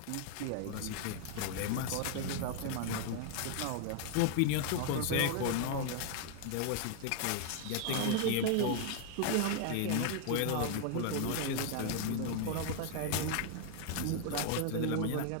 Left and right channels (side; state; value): both; different; correlation 0.00